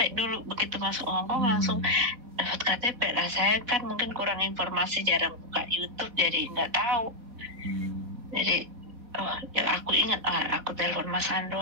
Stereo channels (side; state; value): left; late; 4.2 ms